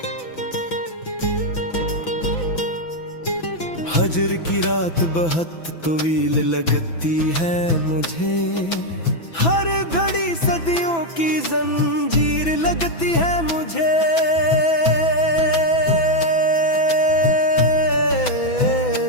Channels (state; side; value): late; right; 6.0 ms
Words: फजर की रात बहुत तवील लगती है मुझे, हर घड़ी सदियों की जंजीर लगती है मुझे।